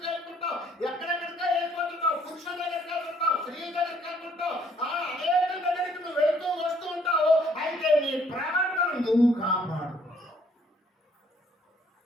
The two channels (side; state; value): both; normal; correlation 0.63